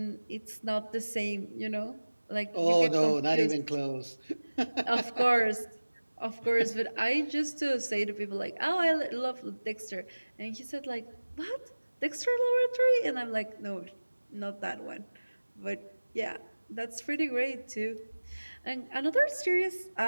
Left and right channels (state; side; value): inverted; both; correlation -1.00